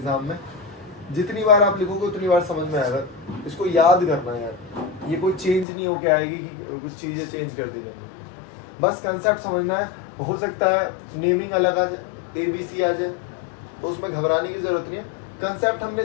में, जितनी बार आप लिखोगे उतनी बार समझ में आएगा, इसको याद करना है यार, ये कोई चेंज नहीं होके आएगी कि कुछ चीजें चेंज कर दी जाएंगी, बस कंसेप्ट समझना है। हो सकता है नेमिंग अलग आ जाए, ABC आ जाए, तो उसमें घबराने की जरूरत नहीं है। कंसेप्ट हमने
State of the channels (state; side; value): drops out; right; at 5.7 s